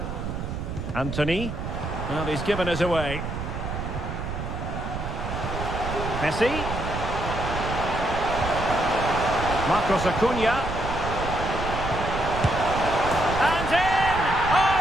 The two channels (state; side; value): noise; right; rumble, 5 dB below the sound